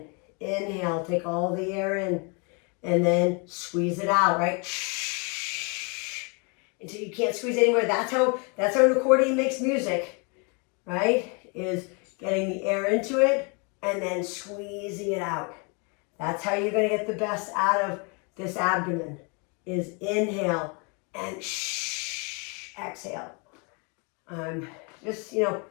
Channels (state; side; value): quieter; right; 33.7 dB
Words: Inhale, take all the air in, and then squeeze it out, right? Until you can't squeeze anymore. That's how an accordion makes music, right? Is getting the air into it and then squeezing it out. That's how you're going to get the best out of this abdomen, is inhale and exhale. Just,